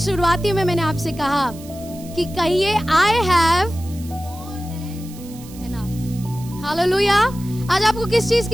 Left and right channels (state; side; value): noise; right; hiss, 20 dB below the sound